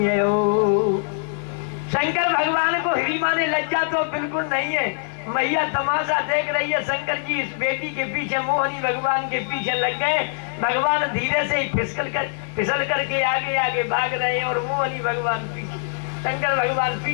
यो। शंकर भगवान को हिड़ीमा ने लज्जा तो बिल्कुल नहीं है। मैया तमाशा देख रही है। शंकर जी इस बेटी के पीछे मोहिनी भगवान के पीछे लग गए। भगवान धीरे से फिसल करके आगे आगे भाग रहे हैं और मोहिनी भगवान पीछे, शंकर भगवान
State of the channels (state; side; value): silent; right; digital silence